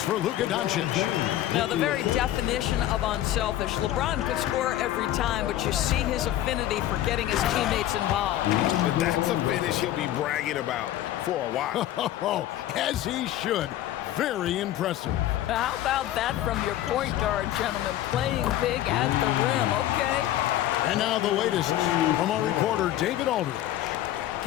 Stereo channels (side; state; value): right; quieter; 13.2 dB